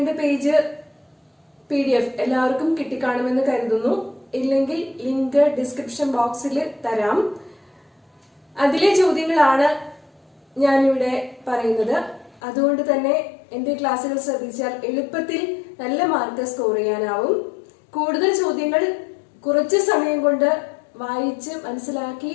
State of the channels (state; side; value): drops out; right; at 12.4 s